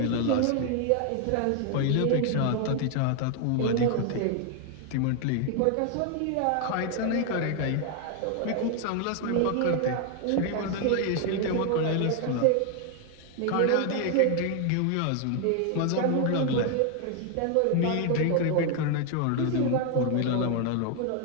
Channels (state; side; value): different; both; correlation 0.00